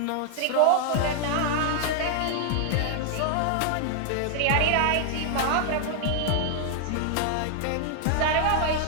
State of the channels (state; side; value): different; both; correlation 0.00